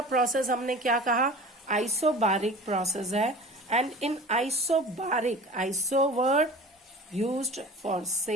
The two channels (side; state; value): both; normal; correlation 0.40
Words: प्रोसेस हमने क्या कहा, आइसोबारिक प्रोसेस है. And in isobaric, iso word used for